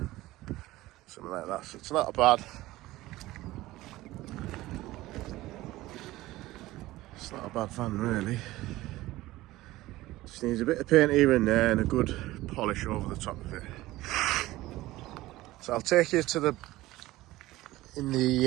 Something like that. So it's not bad. It's not a bad van really. Just needs a bit of paint here and there and a good polish over the top of it. So I'll take you to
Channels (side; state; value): left; quieter; 17.5 dB